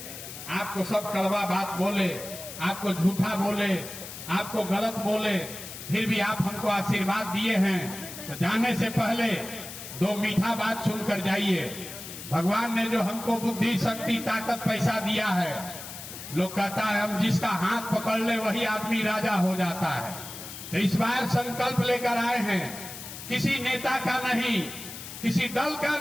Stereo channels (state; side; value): noise; left; hiss, 11 dB below the sound